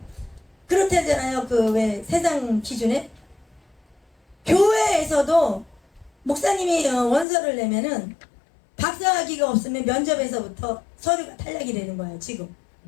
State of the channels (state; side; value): drops out; right; at 7.2 s